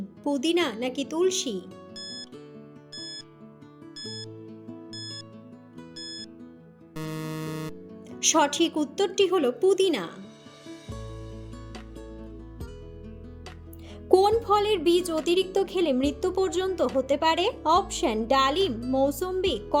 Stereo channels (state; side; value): identical; both; correlation 1.00